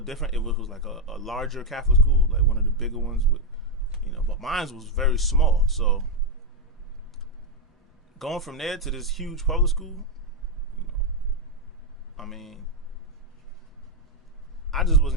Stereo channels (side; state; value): both; normal; correlation 0.01